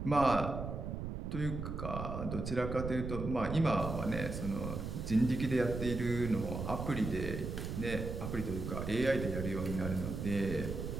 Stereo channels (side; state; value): right; noise; rumble, 5 dB below the sound